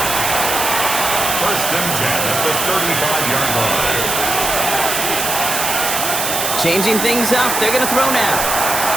First and 10 at the 35-yard line. Changing things up, they're going to throw now.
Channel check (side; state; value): right; noise; hiss, 1 dB below the sound